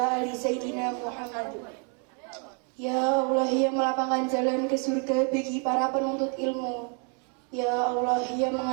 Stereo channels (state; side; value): quieter; left; 38.8 dB